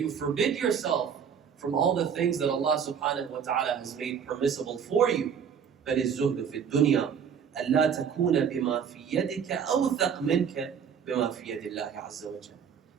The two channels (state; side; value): quieter; left; 7.3 dB